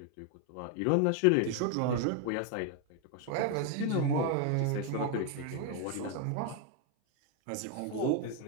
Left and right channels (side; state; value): both; different; correlation 0.01